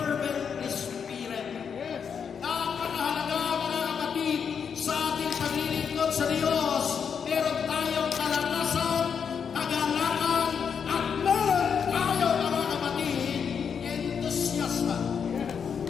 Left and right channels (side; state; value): right; quieter; 6.9 dB